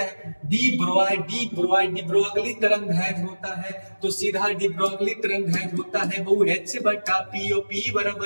हैं। डी ब्रोगली तरंगदैर्घ्य होता है, तो सीधा डी ब्रोगली तरंगदैर्घ्य होता है वो H/P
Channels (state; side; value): inverted; both; correlation -1.00